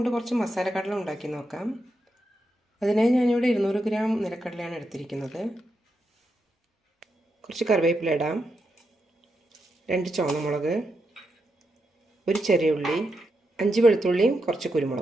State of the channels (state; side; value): normal; both; correlation 0.84